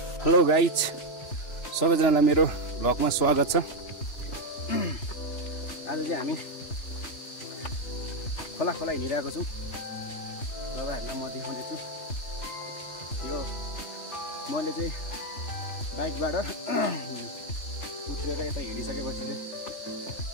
हेलो गाइज, सबैजनालाई मेरो भ्लगमा स्वागत छ। आज चाहिँ हामी खोला हिँडिरहेको छौँ। तपाईँहरूलाई म देखाउँदैछु। यो मैले चाहिँ बाइकबाट उत्रेर यता हिँडिसकेपछि चाहिँ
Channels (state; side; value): late; right; 2.9 ms